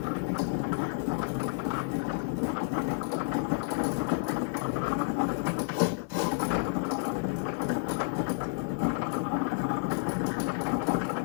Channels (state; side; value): silent; right; digital silence